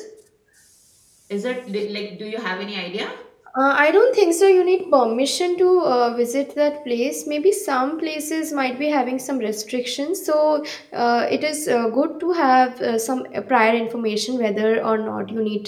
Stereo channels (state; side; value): identical; both; correlation 1.00